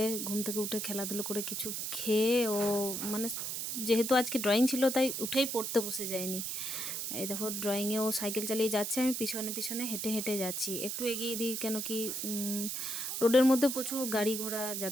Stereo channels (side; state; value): right; noise; hiss, 3 dB below the sound